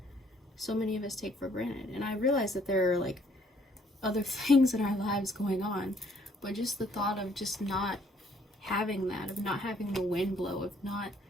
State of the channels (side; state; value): both; normal; correlation 0.64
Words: so many of us take for granted. And I realize that there are like other things in our lives going on, but just the thought of just not having that, of not having the wind blow, of not